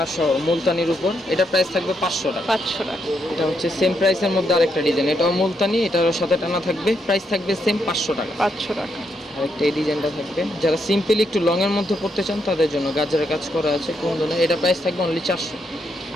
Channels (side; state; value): both; normal; correlation 0.79